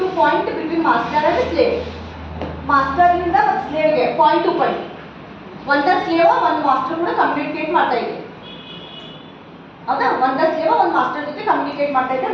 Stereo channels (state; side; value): identical; both; correlation 1.00